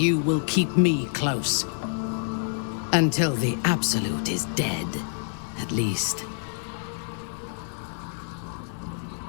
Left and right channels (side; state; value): right; silent; 60 dB below the other